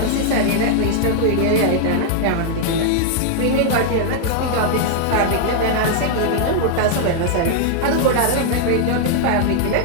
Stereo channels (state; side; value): different; both; correlation -0.01